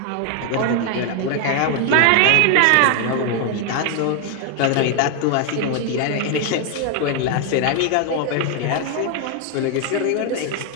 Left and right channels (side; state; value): both; different; correlation 0.01